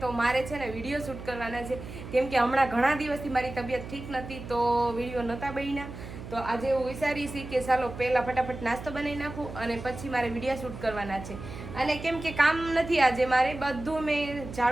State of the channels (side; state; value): right; noise; hum, 11 dB below the sound